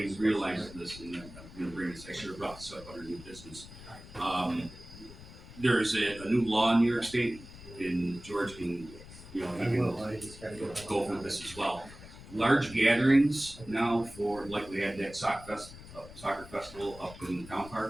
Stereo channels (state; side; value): noise; left; rumble, 16 dB below the sound